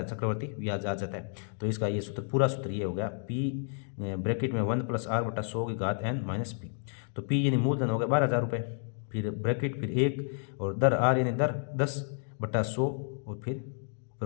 चक्रवर्ती ब्याज आ जाता है। तो इसका ये सूत्र, पूरा सूत्र ये हो गया पी ब्रैकेट में 1 + r/100 - p। तो पी यानी मूलधन हो गया 12,000 रुपये, फिर ब्रैकेट, फिर 1 और दर आर यानी दर 10/100 और फिर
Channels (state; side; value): silent; right; 57 dB below the other